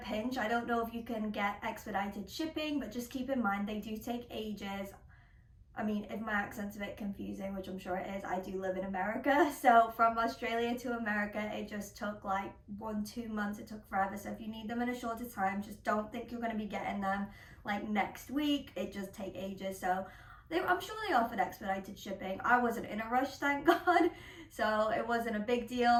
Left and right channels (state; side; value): identical; both; correlation 1.00